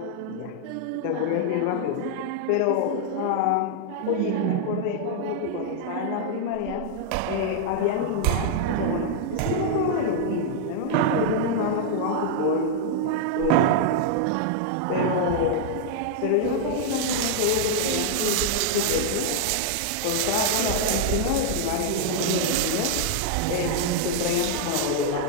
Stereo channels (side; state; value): both; different; correlation -0.01